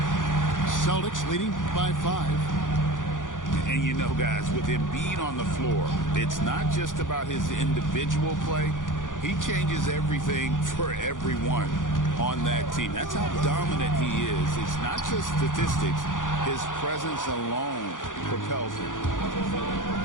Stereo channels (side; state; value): right; late; 0.88 ms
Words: Celtics leading by 5. And you know, guys, with Embiid on the floor, it's not just about his individual play. He changes everything for everyone on that team. That's how dominant he is. It's not just statistics. His presence alone propels him.